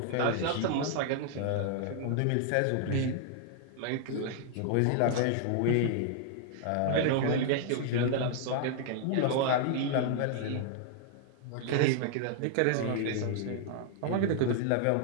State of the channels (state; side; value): different; both; correlation -0.01